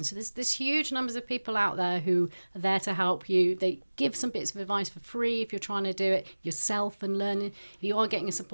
So there's huge numbers of people out there who are there to help you. They give some bits of advice for free if you're trying to do it yourself and learning. If you are getting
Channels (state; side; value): inverted; both; correlation -1.00